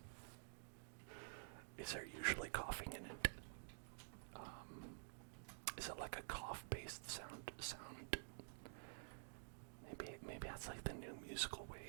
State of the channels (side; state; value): left; silent; digital silence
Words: is there usually coughing in it? Is it like a cough-based sound? Maybe that's like the new musical